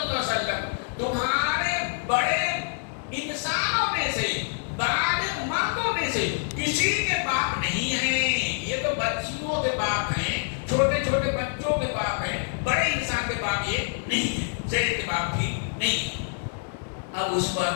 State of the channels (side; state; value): right; silent; 61 dB below the other